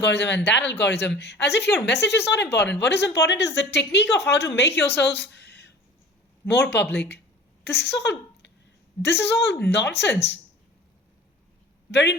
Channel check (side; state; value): both; normal; correlation 0.42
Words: and that algorithm, as if your message is not important. What is important is the technique of how to make yourself more public. This is all this is all nonsense. Wherein